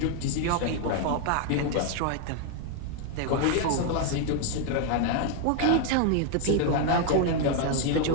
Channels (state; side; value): different; both; correlation 0.00